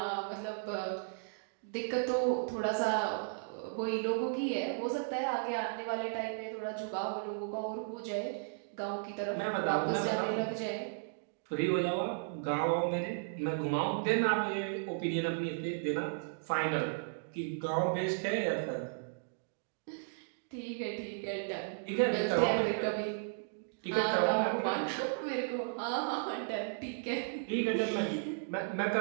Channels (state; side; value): silent; left; digital silence